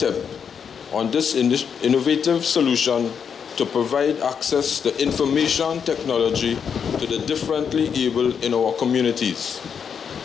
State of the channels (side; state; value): right; quieter; 7.0 dB